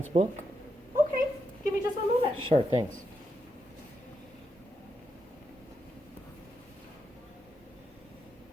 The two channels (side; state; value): both; normal; correlation 0.83